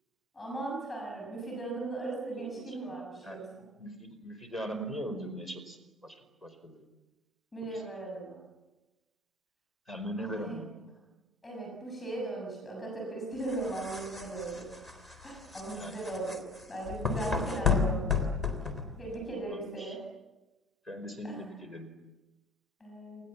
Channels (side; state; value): both; normal; correlation 0.43